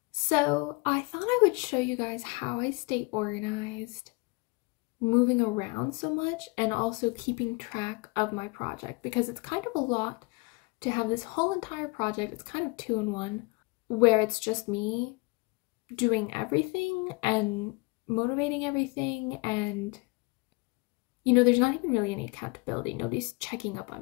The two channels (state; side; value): quieter; right; 27.2 dB